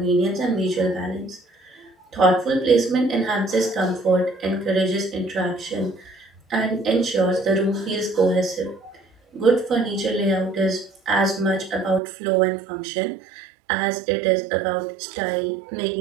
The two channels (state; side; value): drops out; left; at 12.0 s